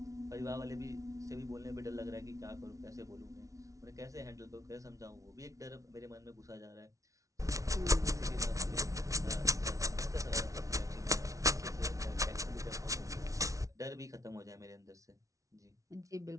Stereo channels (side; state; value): left; late; 0.16 ms